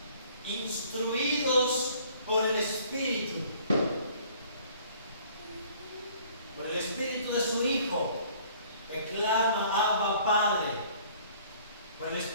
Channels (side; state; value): both; inverted; correlation -0.56